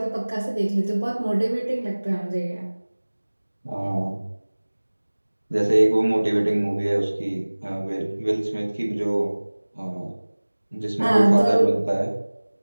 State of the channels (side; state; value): both; inverted; correlation -1.00